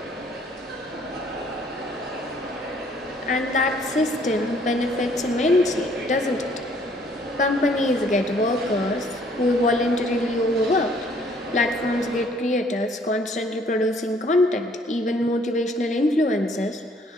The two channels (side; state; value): both; normal; correlation 0.61